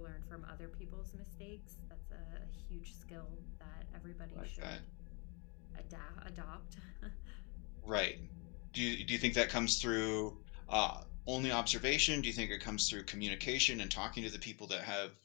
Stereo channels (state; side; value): quieter; right; 32.0 dB